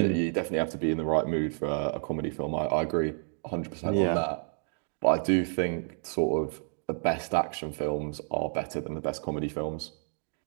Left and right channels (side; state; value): left; silent; 58 dB below the other